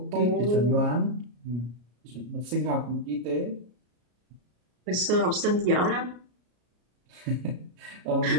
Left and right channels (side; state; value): left; late; 33 ms